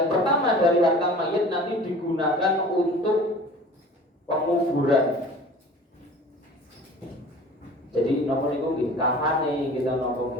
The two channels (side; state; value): both; normal; correlation 0.43